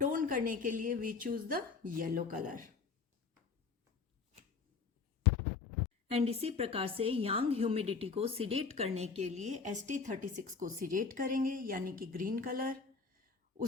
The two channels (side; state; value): right; quieter; 5.0 dB